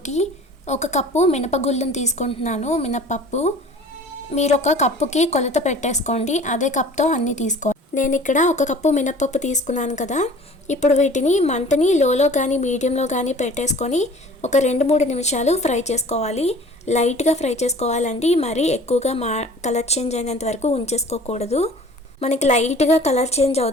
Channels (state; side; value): normal; both; correlation 0.46